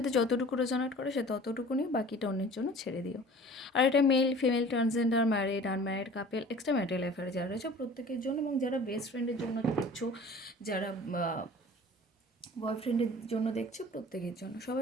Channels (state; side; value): normal; both; correlation 0.45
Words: যতটুকু রেজনেট করে সে ততটুকু নিয়ে বাকিটা অন্যের জন্য ছেড়ে দিও। আর এটা male, female, transgender, married, unmarried couple, extra marital affair যারা রয়েছে প্রত্যেকের জন্য, এবং যারা বেস্ট ফ্রেন্ডের জন্য দেখছো, যারা বয়ফ্রেন্ডের জন্য দেখছো, প্রত্যেকের জন্য।